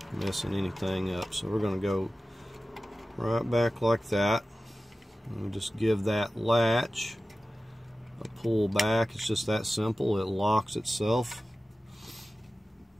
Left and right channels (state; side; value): normal; both; correlation 0.95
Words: messing anything up. So we're going to go right back like that. And we'll just give that latch a pull back. It's just that simple. It locks itself.